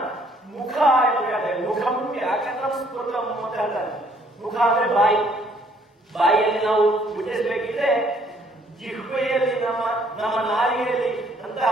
ಮುಖ ಎಂದು ಹೇಳ್ತಾರೆ. ಮುಖಂ ವ್ಯಾಕರಣ ಸ್ಫುಟಂ ಅಂತ ಹೇಳ್ತಾರೆ. ಮುಖ ಅಂದ್ರೆ ಬಾಯಿಯಲ್ಲಿ ನಾವು ಉಚ್ಚರಿಸಬೇಕಿದ್ರೆ ಜಿಹ್ವೆಯಲ್ಲಿ ನಮ್ಮ ನಾಲಿಗೆಯಲ್ಲಿ ಅಂತಹ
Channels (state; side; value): normal; both; correlation 0.64